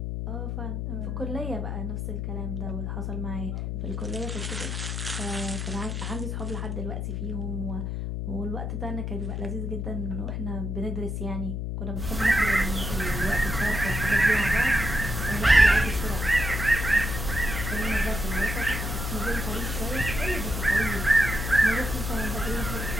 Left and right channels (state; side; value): noise; left; hum, 3 dB below the sound